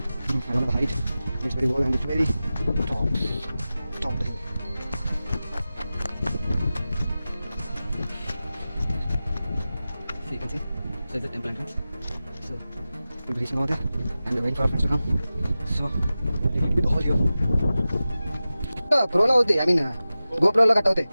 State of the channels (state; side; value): inverted; both; correlation -0.95